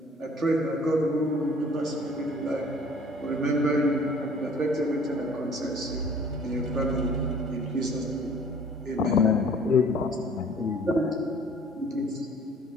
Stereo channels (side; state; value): both; normal; correlation 0.53